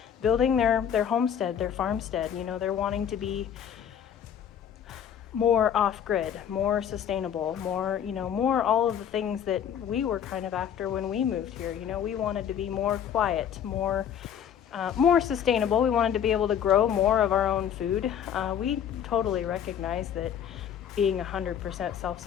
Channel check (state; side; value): quieter; right; 8.9 dB